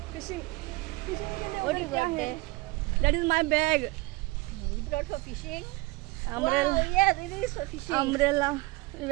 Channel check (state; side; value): quieter; left; 22.6 dB